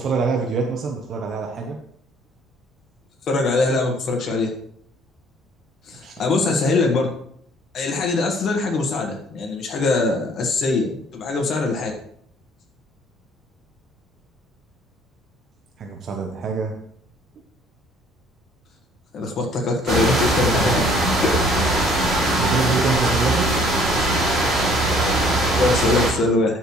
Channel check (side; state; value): both; normal; correlation 0.58